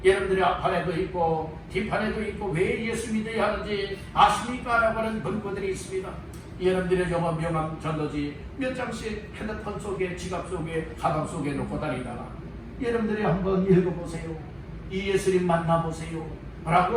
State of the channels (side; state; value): both; identical; correlation 1.00